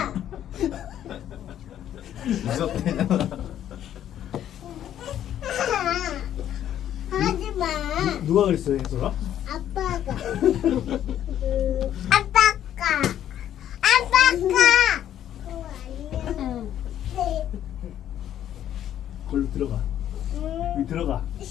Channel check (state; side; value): quieter; right; 10.9 dB